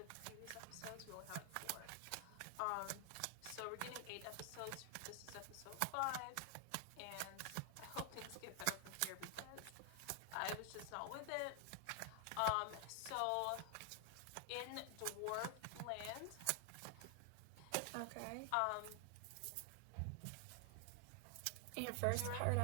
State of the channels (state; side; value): different; both; correlation 0.00